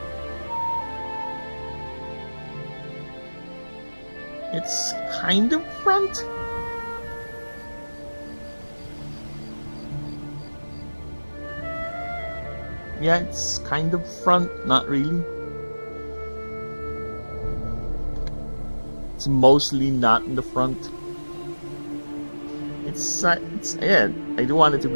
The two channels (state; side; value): inverted; both; correlation -1.00